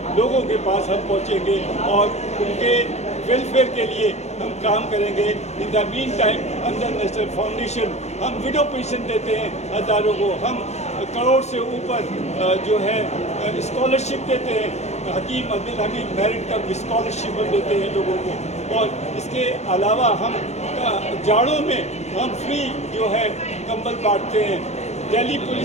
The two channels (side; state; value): right; late; 0.32 ms